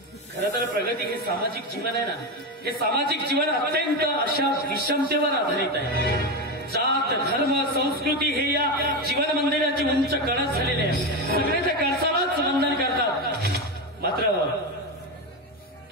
खरं तर प्रगती, हे सामाजिक जीवन आहे ना, हे सामाजिक जीवन अत्यंत अशा विषमतेवर आधारित आहे. जात, धर्म, संस्कृती हे या जीवन मंदिराची उंच कळस झालेले आहे. सगळे त्या कळसालाच वंदन करतात, मात्र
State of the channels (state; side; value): normal; both; correlation 0.15